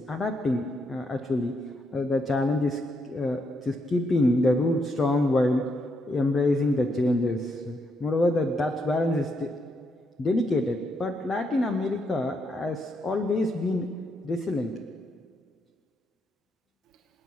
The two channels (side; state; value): both; normal; correlation 0.78